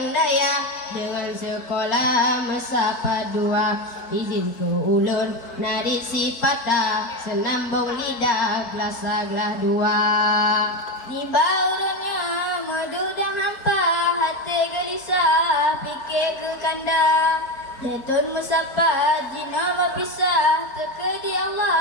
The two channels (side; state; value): right; late; 4.3 ms